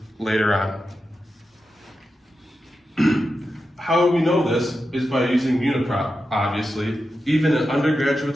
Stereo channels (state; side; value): normal; both; correlation 0.90